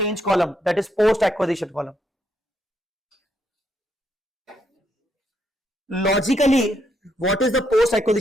column, that is post acquisition column. Logically, what is the post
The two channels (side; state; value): both; normal; correlation 0.76